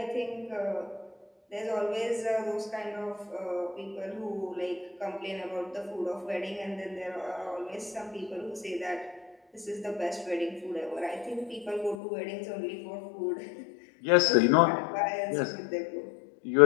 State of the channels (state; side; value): drops out; right; at 12.0 s